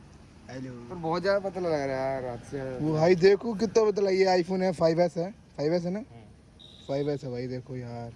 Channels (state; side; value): identical; both; correlation 1.00